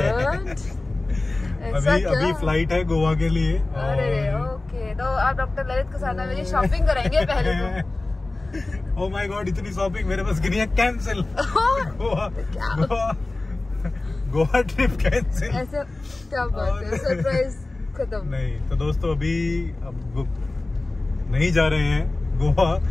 अभी फ्लाइट है गोवा के लिए। अरे ओके, तो आप डॉक्टर ललित के साथ मेरी शॉपिंग कराएंगे पहले तो। ओह माय गॉड, इतनी शॉपिंग मेरे पास नहीं है। कैंसिल। Goa trip cancel. ऐसे क्या बात है, सरप्राइज खत्म। नहीं तो दोस्तों अभी अब नहीं जा रहे हैं गोवा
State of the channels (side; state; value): right; quieter; 3.0 dB